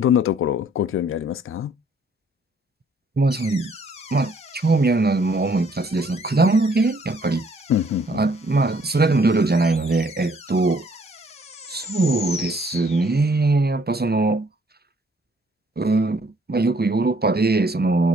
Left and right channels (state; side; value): normal; both; correlation 0.63